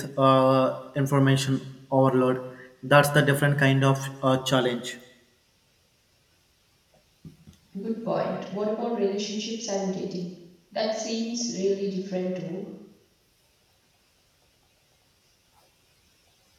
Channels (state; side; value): identical; both; correlation 1.00